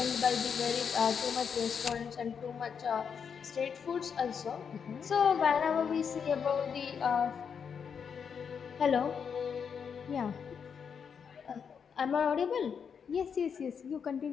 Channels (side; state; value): right; quieter; 6.8 dB